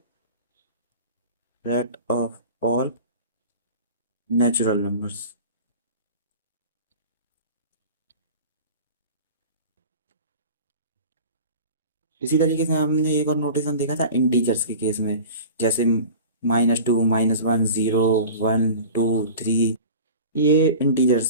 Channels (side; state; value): both; inverted; correlation -0.37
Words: of all natural numbers. इसी तरीके से हमने एक और नोटेशन देखा था इंटीजर्स के केस में, जैसे -2 -1 0 1 2 3। ये